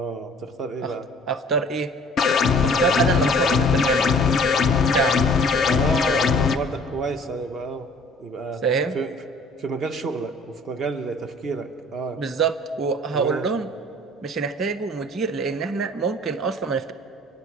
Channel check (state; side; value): normal; both; correlation 0.51